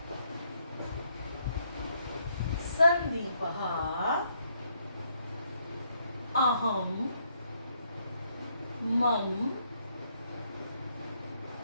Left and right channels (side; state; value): both; inverted; correlation -0.72